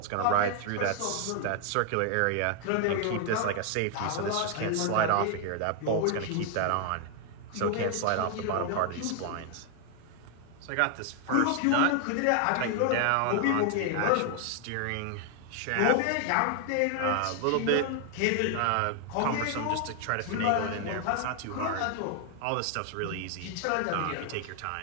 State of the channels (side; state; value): both; different; correlation 0.00